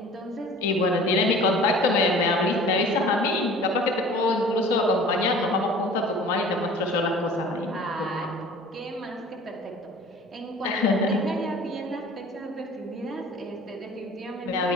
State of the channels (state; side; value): normal; both; correlation 0.45